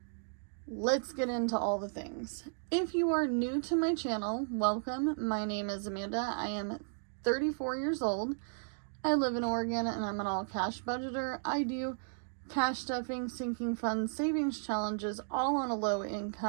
let's get into all the things. If you are new to my channel, welcome. My name is Amanda. I am 34 years old. I live in Oregon and I'm an all-cash budgeter. I do cash stuffing, sinking funds, savings challenges, all on a low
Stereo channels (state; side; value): silent; left; digital silence